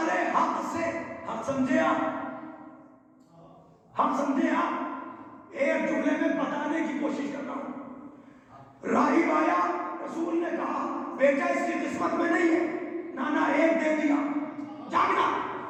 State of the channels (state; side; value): identical; both; correlation 1.00